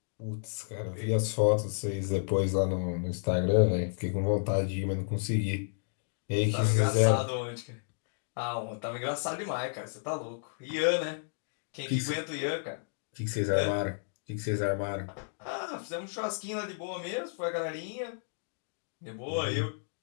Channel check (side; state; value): right; silent; digital silence